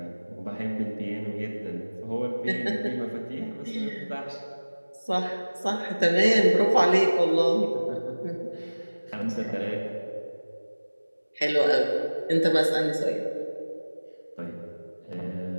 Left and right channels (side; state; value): both; inverted; correlation -1.00